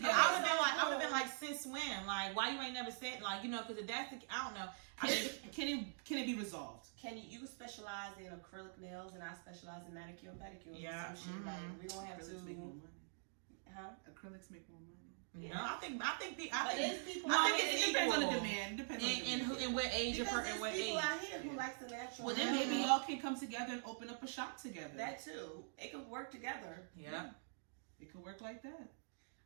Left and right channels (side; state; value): left; silent; digital silence